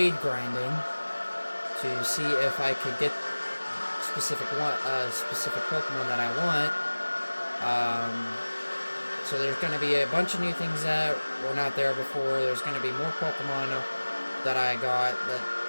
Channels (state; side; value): inverted; both; correlation -1.00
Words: grinding to see if I could get specific Pokemon that I want. So there's going to be a bunch of new things that were not there before. There's going to be more Pokemon that I got that